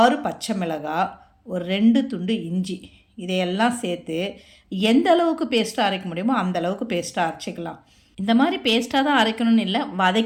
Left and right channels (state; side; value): identical; both; correlation 1.00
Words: பச்சை மிளகாய், ஒரு 2 துண்டு இஞ்சி, இதையெல்லாம் சேர்த்து எந்த அளவுக்கு பேஸ்ட்டாக அரைக்க முடியுமோ அந்த அளவுக்கு பேஸ்ட்டாக அரைச்சிக்கலாம். இந்த மாதிரி பேஸ்ட்டாக தான் அரைக்கணும்னு இல்லை,